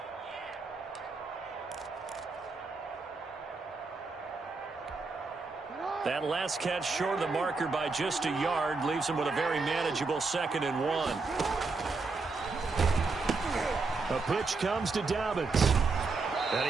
That last catch short of the marker by just a yard leaves him with a very manageable 2nd and 1. A pitch comes to Dobbins.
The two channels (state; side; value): quieter; left; 4.1 dB